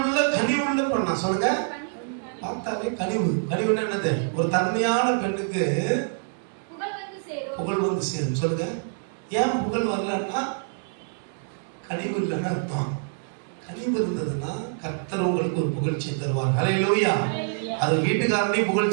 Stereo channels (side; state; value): left; silent; digital silence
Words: பெண்ணா சொல்லுங்க. பார்த்தாலே கனிவுன்னா என்னது? ஒரு தன்மையான பெண்ணுக்கு புகழ் வந்து சேரும். சொல்லுங்க. ஏன் புகழ் வரலன்னா கனிவு இல்லைன்னு அர்த்தம். கனிவு இருந்ததுன்னா கர்த்தர் உங்களுக்கு ஒரு புகழ்ச்சி தருவார். ஹல்லேலூயா. அது வீட்டுக்காரனையும்